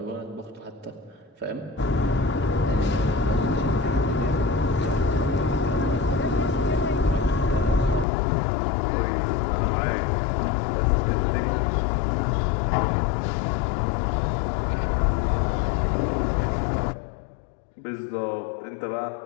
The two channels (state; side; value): drops out; right; at 8.1 s